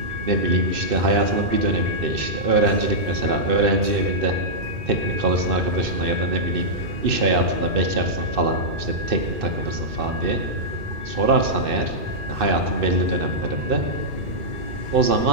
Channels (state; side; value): late; left; 2.4 ms